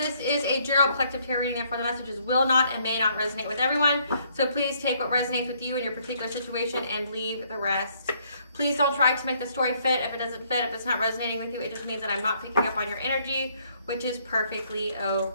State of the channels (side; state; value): both; inverted; correlation -0.67